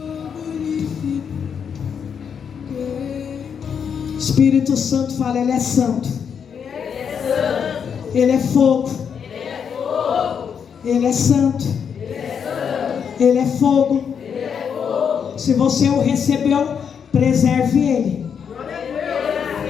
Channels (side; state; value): right; quieter; 7.2 dB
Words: Espírito Santo fala: ele é santo. Ele é fogo. Ele é santo. Ele é fogo. Se você o recebeu, preserve ele.